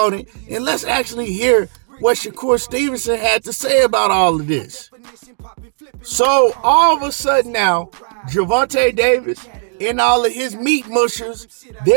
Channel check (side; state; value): left; silent; digital silence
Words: it. And let's actually hear what Shakur Stevenson had to say about all of this. So all of a sudden now, Gervonta Davis and all of his meat mushers,